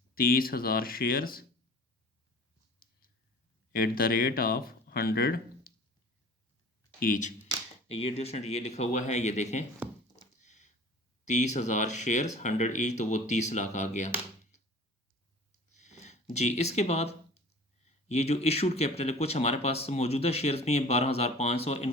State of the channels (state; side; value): normal; both; correlation 0.43